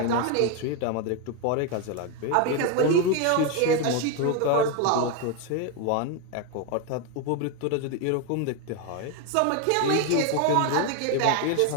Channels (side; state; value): both; different; correlation 0.01